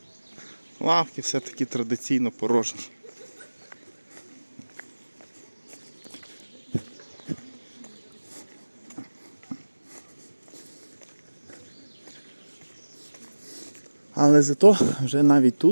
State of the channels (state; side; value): inverted; both; correlation -1.00